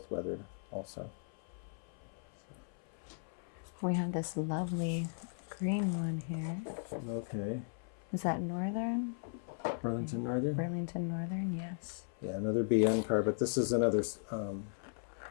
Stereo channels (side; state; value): right; silent; 53 dB below the other